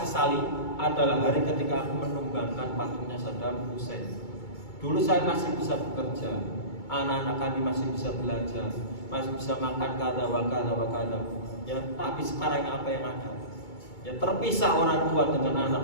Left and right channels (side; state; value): right; late; 2.2 ms